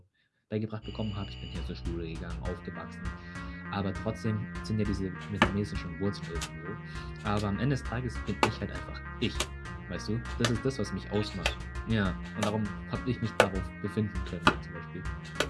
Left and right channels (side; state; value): both; identical; correlation 1.00